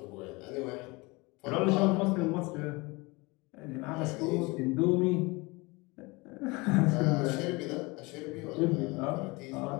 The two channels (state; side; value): quieter; right; 25.1 dB